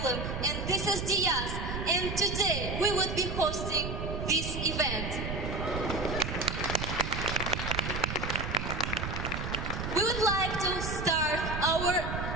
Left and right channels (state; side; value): noise; right; rumble, 4 dB below the sound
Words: and this is Diaz, and today we would be hosting this event. We would like to start our